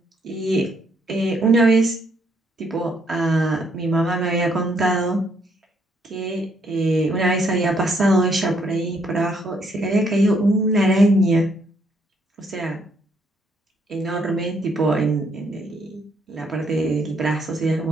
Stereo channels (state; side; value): normal; both; correlation 0.71